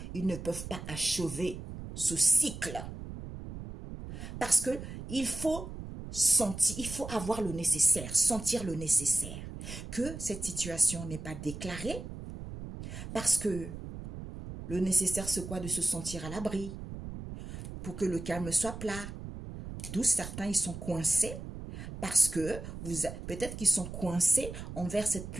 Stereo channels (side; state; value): right; noise; rumble, 10 dB below the sound